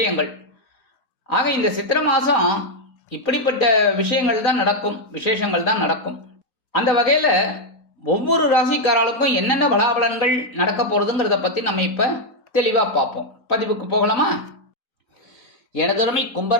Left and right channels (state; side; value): late; right; 4.0 ms